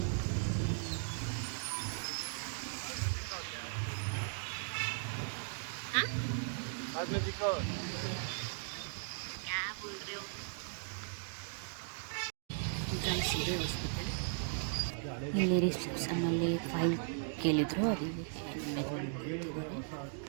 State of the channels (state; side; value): silent; left; digital silence